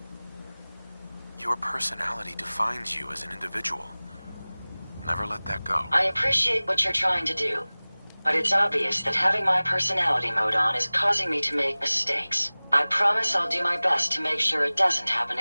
Your personality defines you as an individual. Never let that go. I appreciate what you're trying to do, but it's obvious that having my personality mode on is causing me to make mistakes. I promise I'll do my best to make sure it doesn't happen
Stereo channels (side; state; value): both; inverted; correlation -0.99